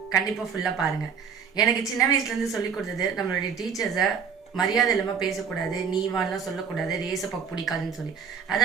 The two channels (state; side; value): quieter; left; 6.7 dB